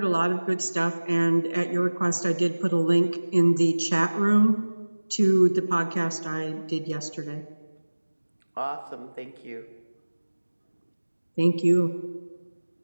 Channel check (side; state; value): both; inverted; correlation -1.00